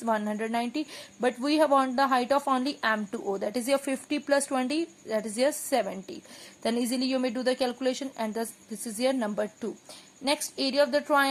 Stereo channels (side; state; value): both; identical; correlation 1.00